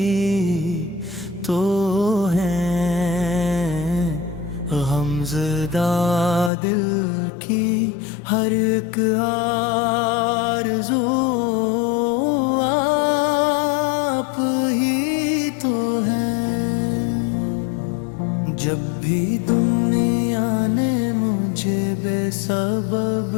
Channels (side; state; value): right; drops out; at 6.5 s